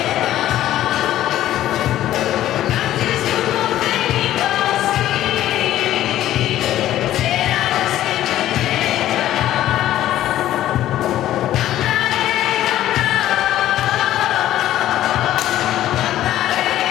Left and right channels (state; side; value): quieter; right; 13.2 dB